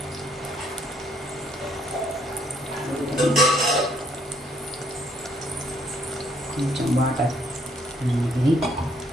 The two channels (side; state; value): both; normal; correlation 0.68